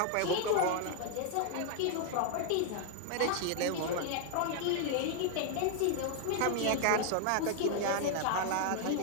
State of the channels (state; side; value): different; both; correlation 0.00